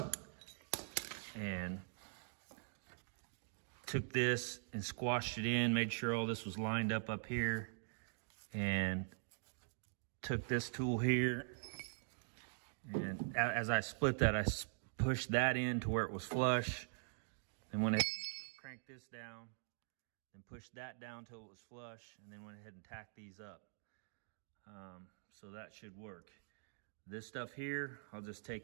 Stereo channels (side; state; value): left; silent; digital silence